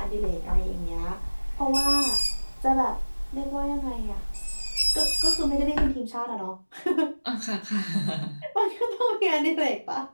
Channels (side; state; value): both; inverted; correlation -1.00